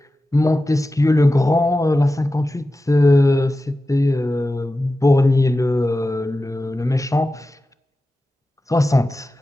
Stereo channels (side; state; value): both; normal; correlation 0.94